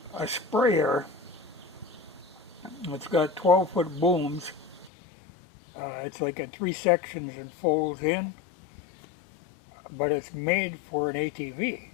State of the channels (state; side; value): drops out; right; at 4.9 s